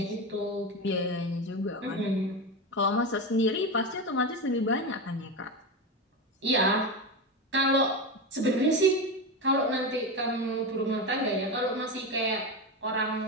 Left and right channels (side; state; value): both; normal; correlation 0.18